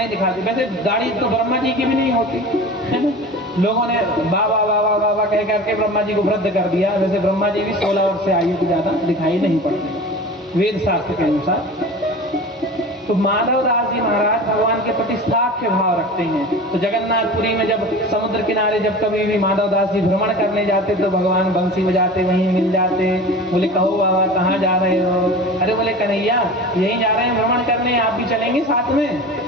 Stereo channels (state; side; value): normal; both; correlation 0.35